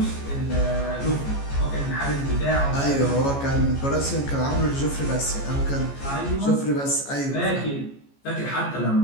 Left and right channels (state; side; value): late; right; 14 ms